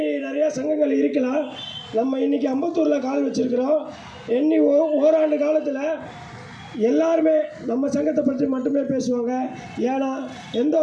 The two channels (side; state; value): both; identical; correlation 1.00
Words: நிறையா சங்கங்கள் இருக்கலாம். நம்ம இன்றைக்கி அம்பத்தூரில் கால் வச்சுருக்கிறோம். எண்ணி ஓராண்டு காலத்தில் எல்லாருமே நம்ம சங்கத்தை பற்றி மட்டுமே பேசுவாங்க. ஏன்னா எந்த